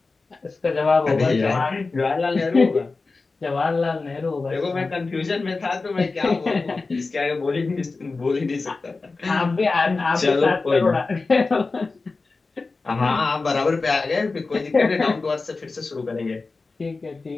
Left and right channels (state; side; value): quieter; right; 3.9 dB